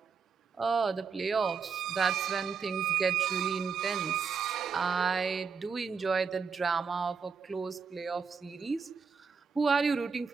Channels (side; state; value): left; quieter; 5.7 dB